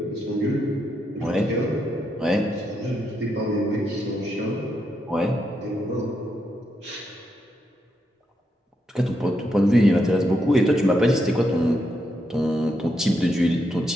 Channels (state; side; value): normal; both; correlation 0.81